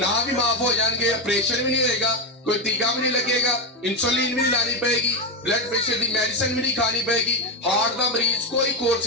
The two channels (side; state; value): both; normal; correlation 0.11